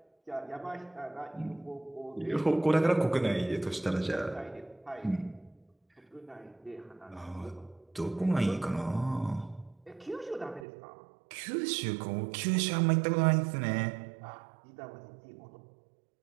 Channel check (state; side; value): drops out; left; at 10.7 s